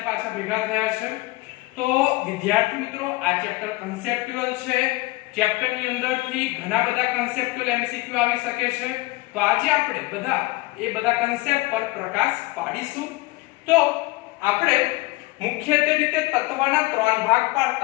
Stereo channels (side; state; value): right; quieter; 21.7 dB